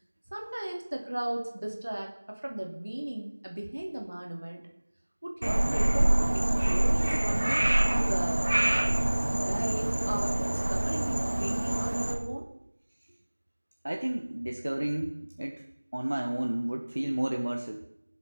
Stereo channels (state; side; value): inverted; both; correlation -1.00